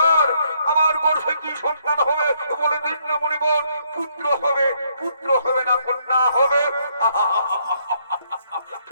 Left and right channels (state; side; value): inverted; both; correlation -0.71